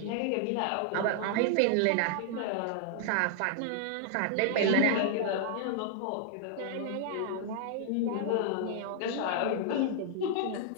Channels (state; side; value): different; both; correlation 0.00